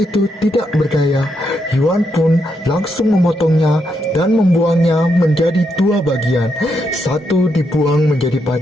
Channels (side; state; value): both; normal; correlation 0.80